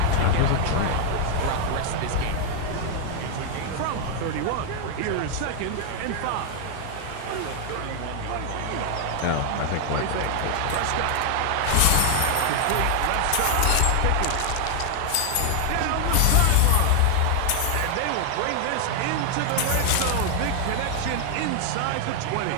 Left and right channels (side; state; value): both; different; correlation 0.00